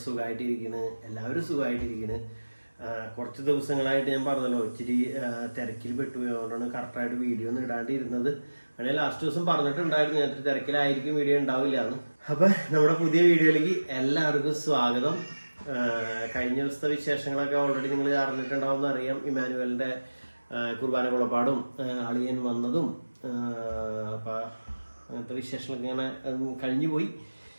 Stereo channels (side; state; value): both; inverted; correlation -1.00